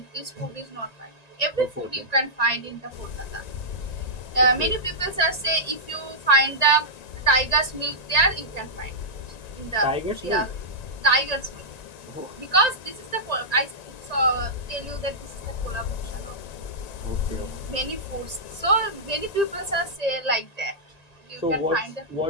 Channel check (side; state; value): right; late; 1.8 ms